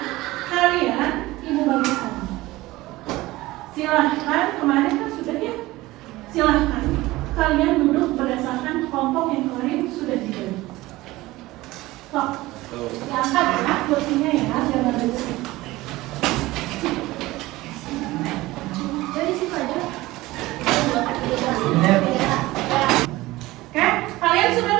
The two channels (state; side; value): quieter; left; 18.8 dB